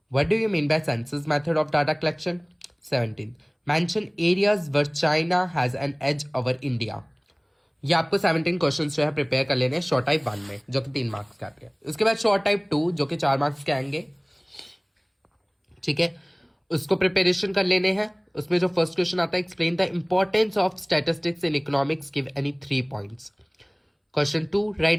what do you mean by census method of data collection? 17th, mention areas where China has an edge over India. ये आपको 17 questions जो है prepare कर लेने हैं short type 1 में जो कि 3 मार्क्स के आते हैं। उसके बाद शॉर्ट टाइप 2 जो कि 4 मार्क्स के आएंगे। ठीक है, उसको प्रिपरेशन कर लेने हैं। उसमें जो फर्स्ट क्वेश्चन आता है, explain the importance of statistics in economics, give any 3 points. Question 2,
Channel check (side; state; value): both; identical; correlation 1.00